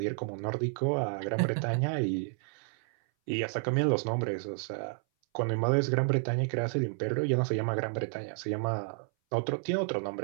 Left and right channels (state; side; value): silent; left; 57 dB below the other